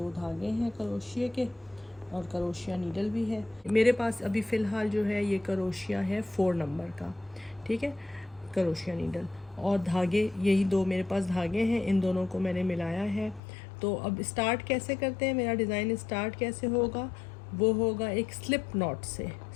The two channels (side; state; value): right; drops out; at 13.4 s